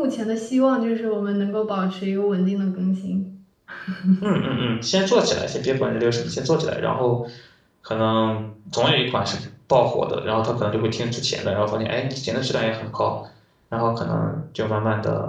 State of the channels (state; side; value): identical; both; correlation 1.00